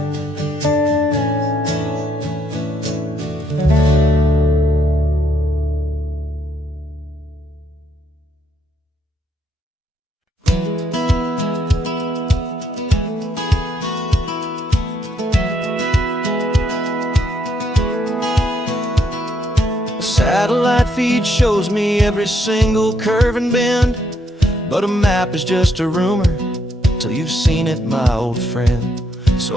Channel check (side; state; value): both; normal; correlation 0.73